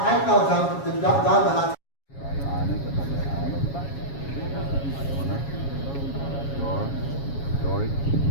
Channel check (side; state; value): right; late; 7.2 ms